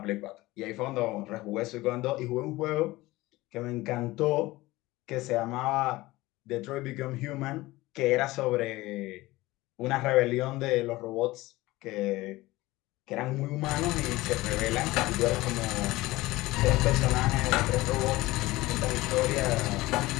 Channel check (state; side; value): quieter; right; 19.2 dB